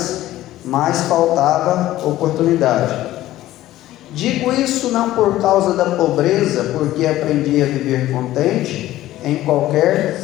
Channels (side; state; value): right; quieter; 14.9 dB